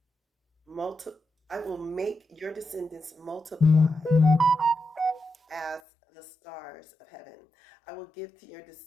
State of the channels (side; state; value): right; drops out; at 5.8 s